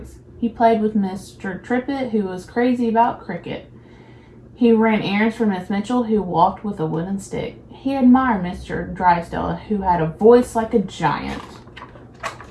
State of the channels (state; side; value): identical; both; correlation 1.00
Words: He played with Mr. Trippett, who was crazy about cricket. He ran errands for Miss Mitchell, who walked with a wooden stick. He admired Mr. Drysdale, who had a voice like a giant.